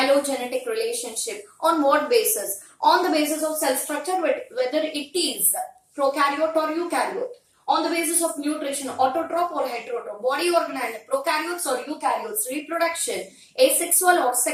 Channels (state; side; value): identical; both; correlation 1.00